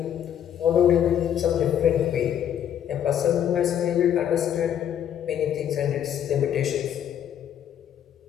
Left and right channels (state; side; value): quieter; right; 9.8 dB